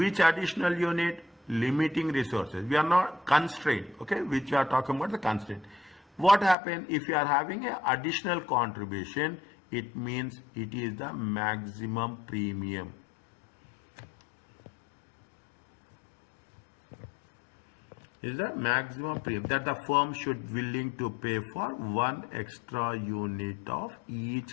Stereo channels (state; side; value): drops out; right; at 6.6 s